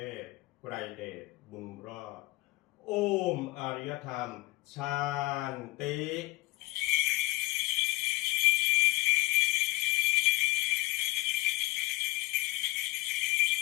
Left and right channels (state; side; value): quieter; right; 21.4 dB